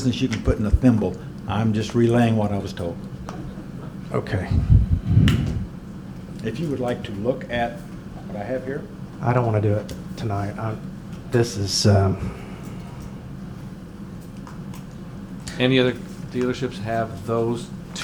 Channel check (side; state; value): both; identical; correlation 1.00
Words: you can put in a thimble. I'm just relaying what I was told. okay. If you would like to look at what I have here, I don't want to do it tonight. This is, Any other dealerships have those